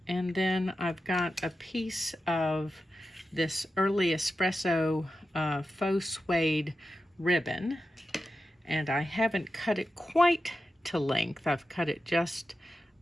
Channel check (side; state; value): both; normal; correlation 0.91